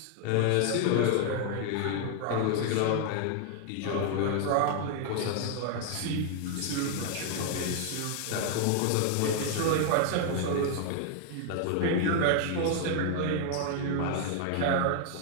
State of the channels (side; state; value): both; different; correlation 0.00